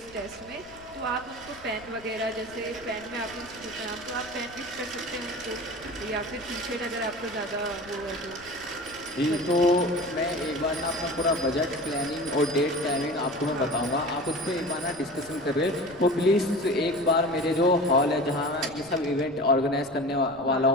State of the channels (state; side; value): noise; left; rumble, 23 dB below the sound